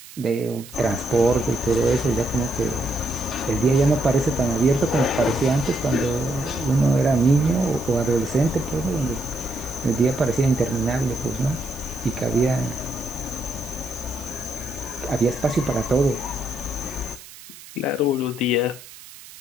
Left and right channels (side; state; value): right; noise; hiss, 18 dB below the sound